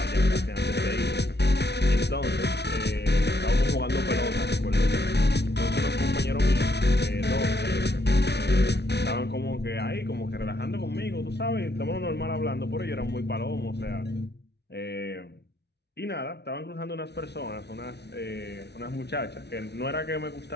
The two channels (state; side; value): late; right; 0.49 ms